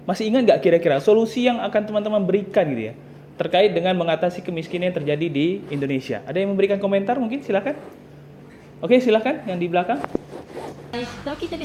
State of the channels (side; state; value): both; identical; correlation 1.00